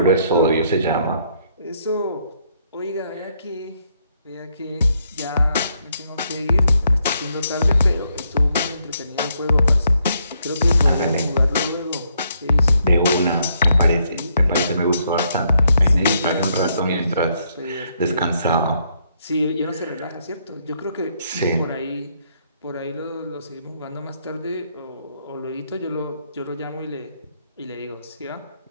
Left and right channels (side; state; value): both; inverted; correlation -0.74